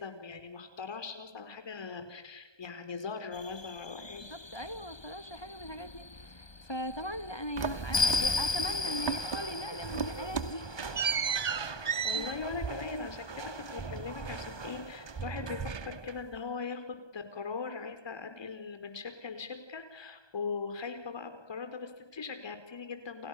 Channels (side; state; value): right; late; 1.2 ms